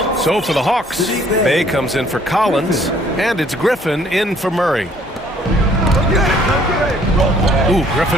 So for the Hawks, Bay comes in for Collins, and it's Griffin in for Murray. Ooh,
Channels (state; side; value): normal; both; correlation 0.60